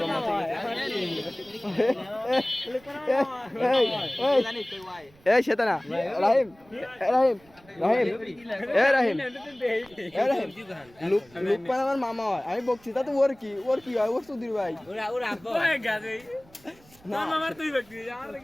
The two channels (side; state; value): right; noise; rumble, 28 dB below the sound